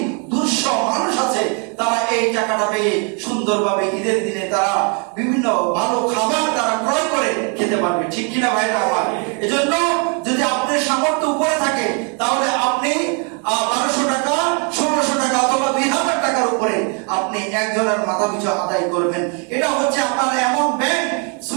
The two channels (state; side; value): quieter; left; 36.9 dB